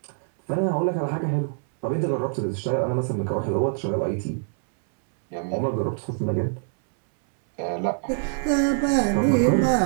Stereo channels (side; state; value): left; silent; 62 dB below the other